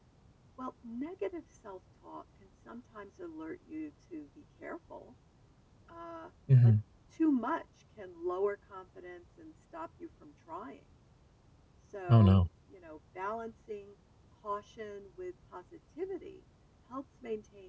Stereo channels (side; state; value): both; identical; correlation 1.00